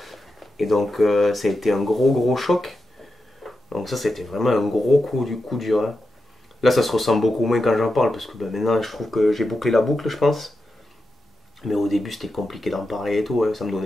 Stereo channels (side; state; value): both; normal; correlation 0.89